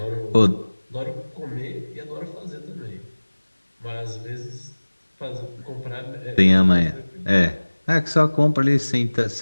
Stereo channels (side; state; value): both; inverted; correlation -1.00